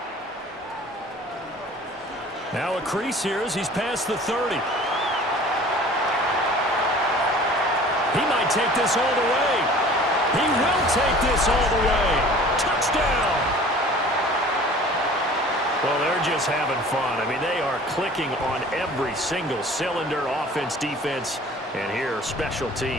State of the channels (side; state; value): both; normal; correlation 0.46